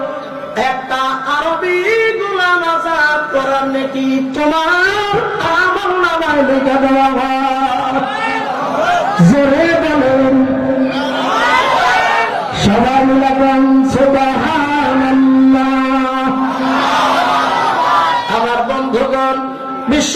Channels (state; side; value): identical; both; correlation 1.00